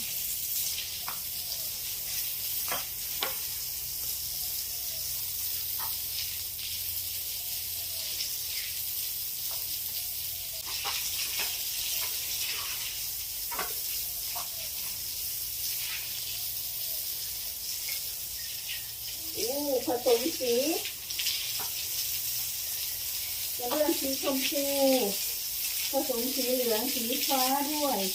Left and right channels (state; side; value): identical; both; correlation 1.00